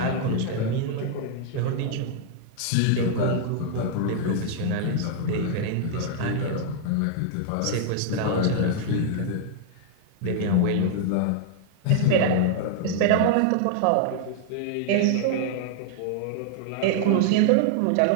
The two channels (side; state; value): both; different; correlation -0.01